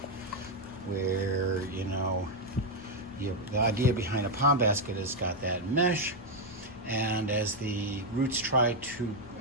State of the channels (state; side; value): normal; both; correlation 0.02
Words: where, you know, the idea behind a pond basket is got that mesh, and as the roots try to